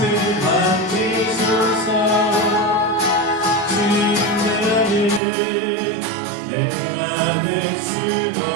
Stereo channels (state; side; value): drops out; left; at 5.2 s